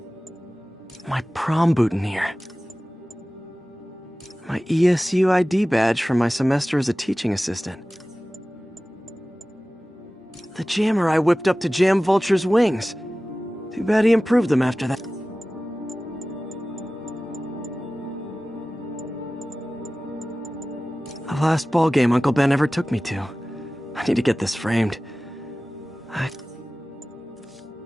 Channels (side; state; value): both; normal; correlation 0.97